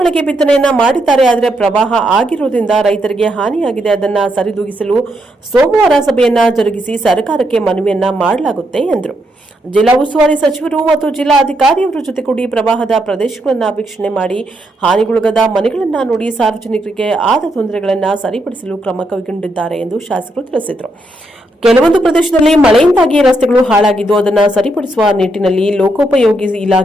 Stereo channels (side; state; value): both; normal; correlation 0.79